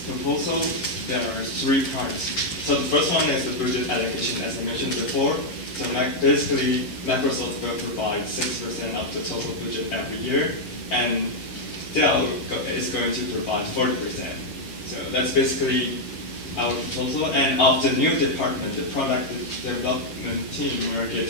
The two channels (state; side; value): late; right; 11 ms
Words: proposal, there are 3 parts. So the first one is the budget allocation, as I mentioned before. So basically, Microsoft will provide 6% of the total budget every year, and Dell is going to provide 40%. So that's basically our proposal. And of the new department, the product development team will get